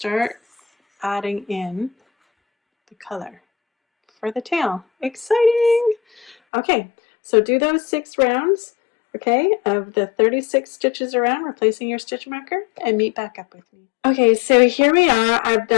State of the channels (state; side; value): drops out; right; at 6.4 s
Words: adding in the color for the tail. Exciting! Okay, so do those 6 rounds, okay, of the 36 stitches around, replacing your stitch marker, and meet back up with me. Okay, so here we are. I've